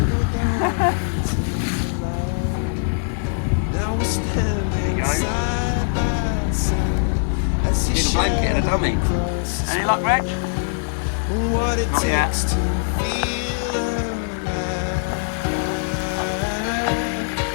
There you go. Need a blanket and a dummy. Any luck, Reg? Not yet.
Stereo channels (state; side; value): silent; right; 64 dB below the other